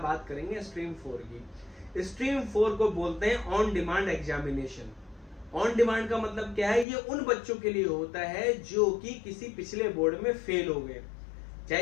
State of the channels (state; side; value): drops out; right; at 6.9 s